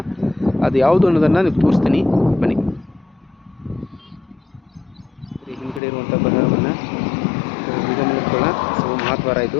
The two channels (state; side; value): drops out; right; at 5.8 s